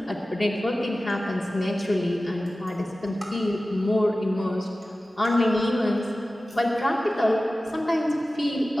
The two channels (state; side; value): normal; both; correlation 0.96